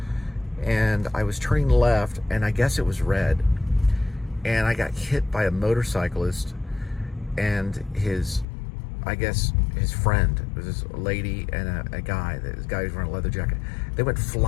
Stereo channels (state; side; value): drops out; right; at 8.5 s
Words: And I was turning left, and I guess it was red. And I got hit by a motorcyclist and his friend. It was this lady and a guy. This guy was wearing a leather jacket. They went